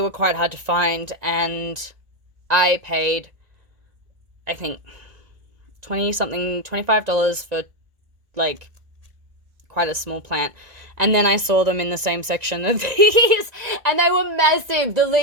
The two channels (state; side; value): late; left; 1.9 ms